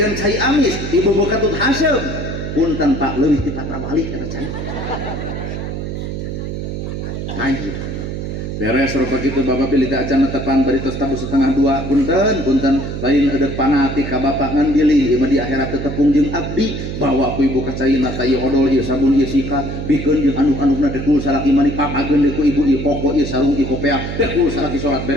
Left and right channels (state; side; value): noise; right; hum, 5 dB below the sound